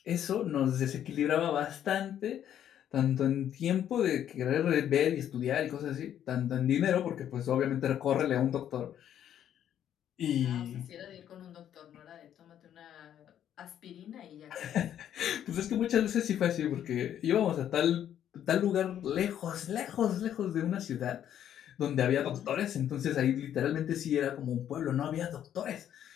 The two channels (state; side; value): quieter; right; 10.3 dB